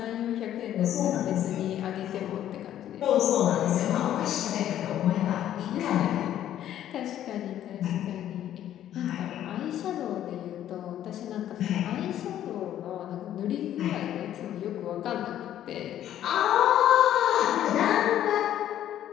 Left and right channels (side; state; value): right; quieter; 11.5 dB